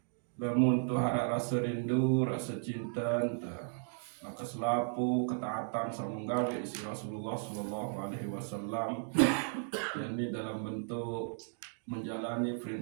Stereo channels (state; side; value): silent; left; 54 dB below the other